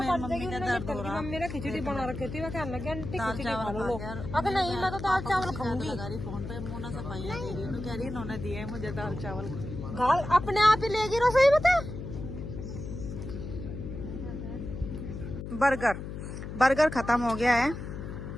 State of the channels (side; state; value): left; noise; hum, 8 dB below the sound